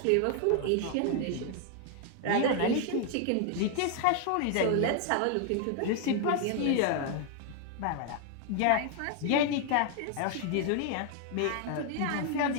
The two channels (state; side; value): different; both; correlation 0.00